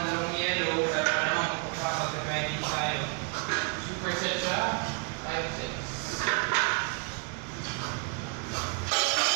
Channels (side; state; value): left; quieter; 39.8 dB